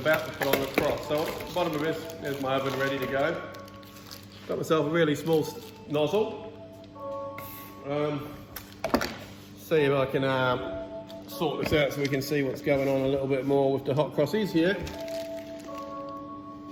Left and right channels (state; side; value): identical; both; correlation 1.00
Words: about to put on the cross. So at the bottom of this, there's my oven ready to go. Got myself a really small nozzle. See if I can sort this out so we can see what's going on a little bit more with the hot crossies here.